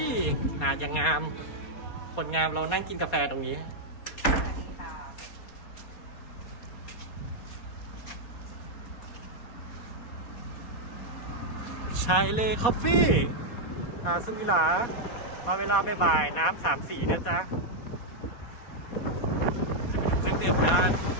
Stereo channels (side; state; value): right; late; 4.2 ms